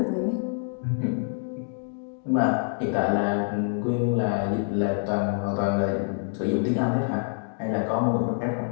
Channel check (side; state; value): right; silent; 61 dB below the other